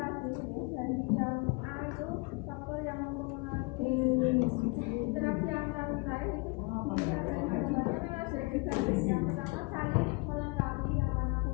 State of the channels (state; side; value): quieter; right; 28.8 dB